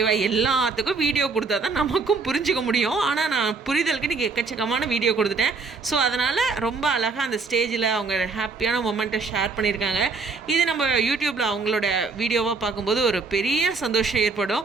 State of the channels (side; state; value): left; quieter; 4.3 dB